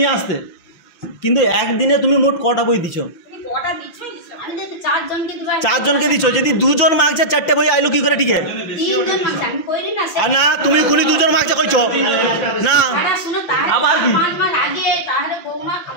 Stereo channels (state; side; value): late; right; 5.9 ms